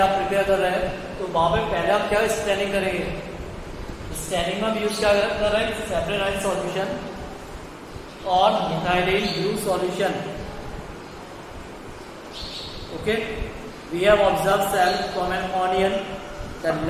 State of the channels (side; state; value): both; identical; correlation 1.00